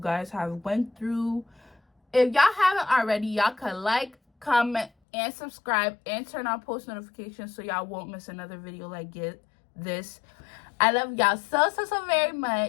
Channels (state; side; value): drops out; right; at 4.9 s